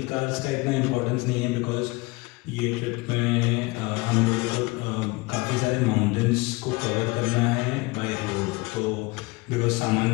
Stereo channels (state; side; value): quieter; right; 24.3 dB